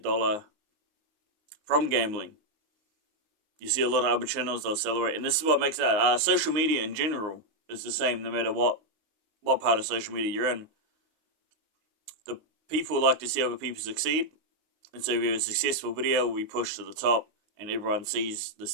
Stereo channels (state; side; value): late; left; 19 ms